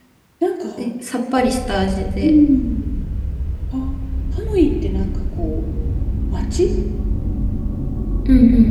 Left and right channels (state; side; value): identical; both; correlation 1.00